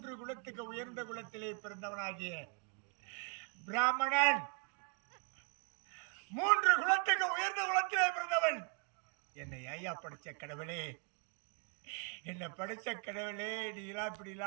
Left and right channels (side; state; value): left; quieter; 39.3 dB